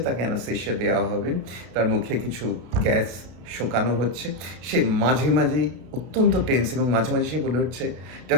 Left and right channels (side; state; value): left; late; 32 ms